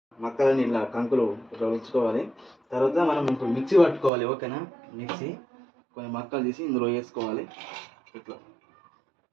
మక్కలని ఇలా కంకులు ఉంచుకోవాలి. తర్వాత మనం ఇప్పుడు మిక్సీ పట్టుకోవాలి. ఓకేనా? మిక్సీ కొన్ని మక్కలు తీసి ఇందులో వేసుకోవాలి ఇట్లా.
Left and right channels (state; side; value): drops out; left; at 4.1 s